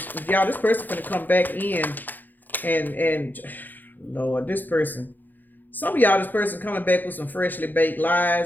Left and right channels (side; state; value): right; late; 0.087 ms